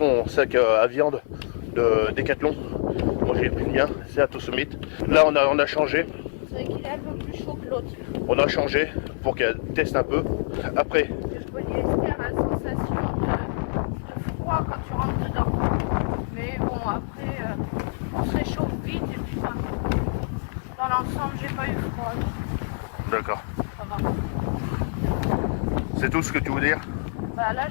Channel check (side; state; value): right; silent; 58 dB below the other